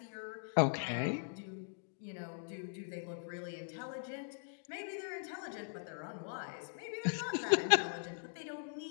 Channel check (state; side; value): silent; right; digital silence